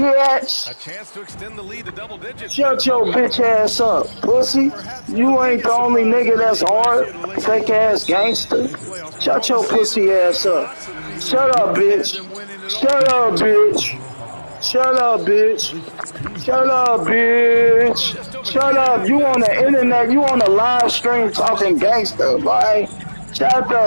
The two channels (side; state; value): both; inverted; correlation -1.00